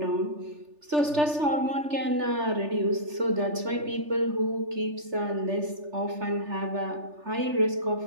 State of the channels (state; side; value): late; left; 3.4 ms